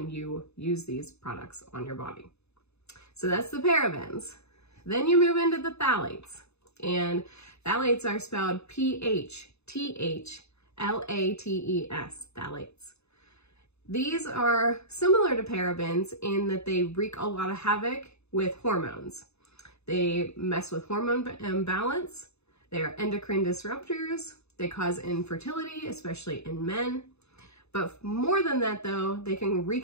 you use these products on your body. So that's the parabens. Then you move into the phthalates, and phthalates are spelled P-H-T-H-L-A-T-E-S, phthalates. These are similar to parabens in that they wreak a lot of havoc with hormones. They mess with hormone balance. They are endocrine disruptors. They cause infertility, especially in men. But more than that though, they can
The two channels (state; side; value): late; right; 0.80 ms